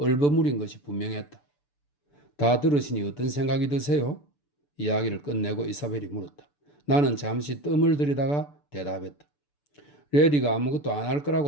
것이 분명했다. 다 들으시니 어떤 생각이 드세요? 이야기를 끝내고 이사벨이 물었다. 나는 잠시 뜸을 들이다가 대답했다. 레리가 아무것도 안 할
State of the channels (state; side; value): late; right; 6.9 ms